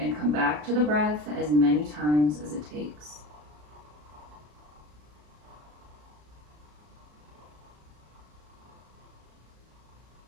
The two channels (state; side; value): late; left; 34 ms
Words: and come back to the breath as many times as it takes.